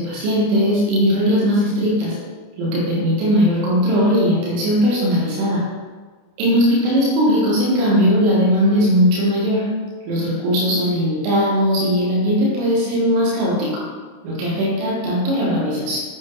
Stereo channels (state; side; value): late; left; 29 ms